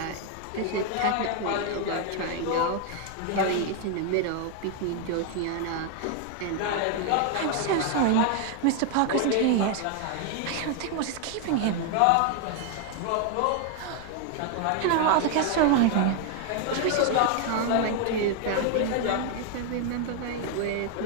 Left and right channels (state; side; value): different; both; correlation 0.00